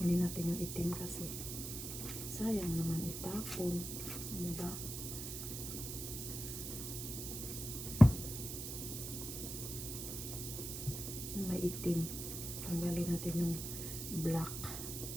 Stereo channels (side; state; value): right; noise; hiss, 6 dB below the sound